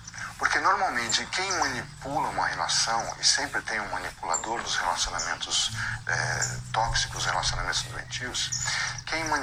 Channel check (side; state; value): both; identical; correlation 1.00